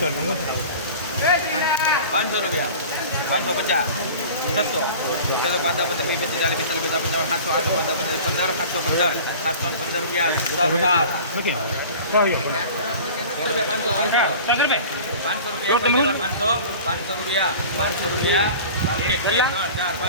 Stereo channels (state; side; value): inverted; both; correlation -0.40